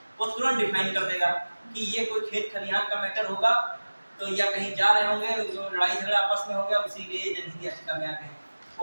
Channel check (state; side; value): inverted; both; correlation -1.00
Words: वो तुरंत डिफाइन कर देगा कि ये कोई खेत खलिहान का मैटर होगा, तो या कहीं जा रहे होंगे, लड़ाई झगड़ा आपस में हो गया, इसीलिए जनहित याचिका में आते हैं।